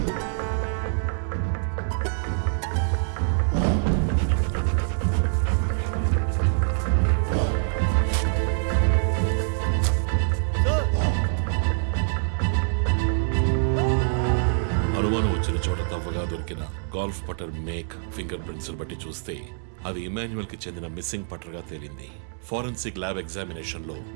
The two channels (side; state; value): left; silent; 62 dB below the other